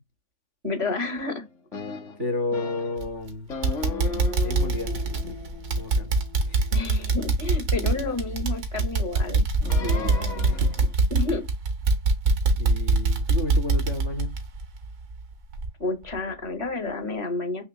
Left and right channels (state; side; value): late; left; 3.5 ms